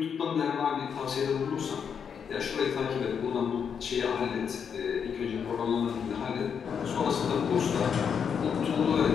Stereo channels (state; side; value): quieter; right; 7.1 dB